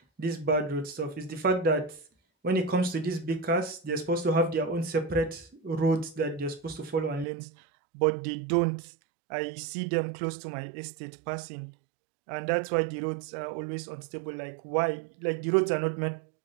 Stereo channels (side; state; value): left; drops out; at 7.2 s